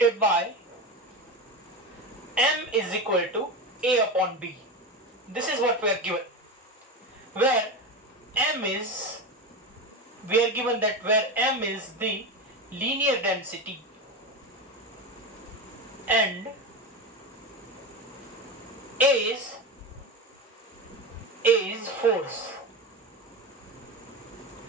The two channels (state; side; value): normal; both; correlation 0.21